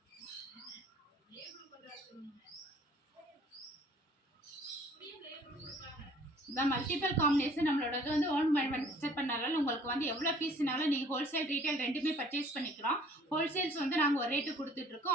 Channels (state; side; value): normal; both; correlation 0.55